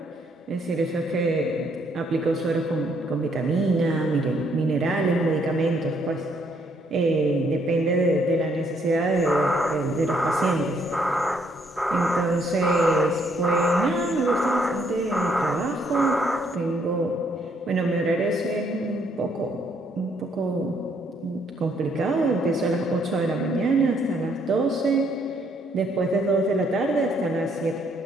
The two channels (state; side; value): normal; both; correlation 0.69